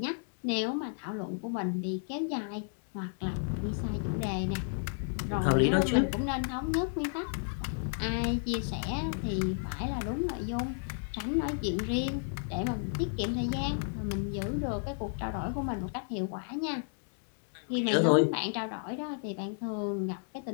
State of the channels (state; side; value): silent; right; 56 dB below the other